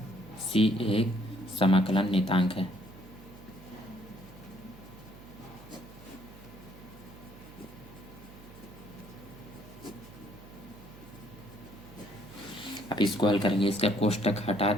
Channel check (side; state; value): right; noise; hum, 19 dB below the sound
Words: c एक समाकलन नियतांक है। अब इसको हल करेंगे, इसका कोष्टक हटा